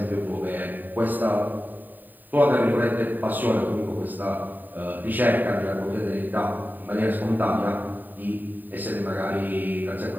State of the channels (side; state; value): left; late; 0.089 ms